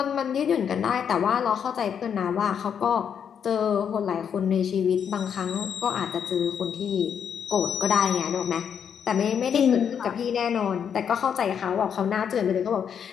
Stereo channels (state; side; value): quieter; right; 7.8 dB